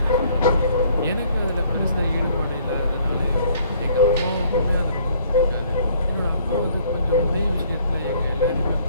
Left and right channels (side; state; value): both; inverted; correlation -0.61